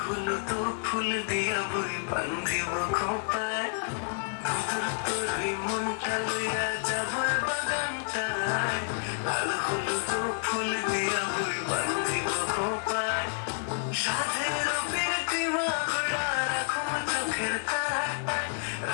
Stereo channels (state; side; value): silent; right; digital silence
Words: হলুদ ফুল দিয়া বই বান্ধিব খোপায় তোর ওই মনটা লইয়া যাবো বাগানটায় কাল হলুদ ফুল দিয়া বই বান্ধিব খোপায় সাধের প্রীতিমা গড়া রাখো চোখের তারায়